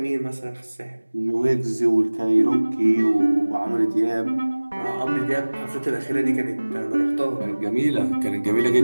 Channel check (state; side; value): inverted; both; correlation -1.00